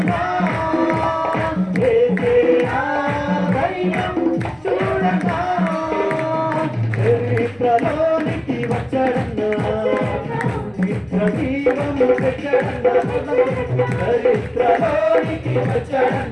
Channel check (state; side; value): noise; right; rumble, 29 dB below the sound